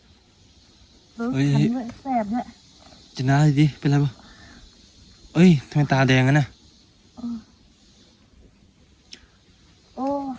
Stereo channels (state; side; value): identical; both; correlation 1.00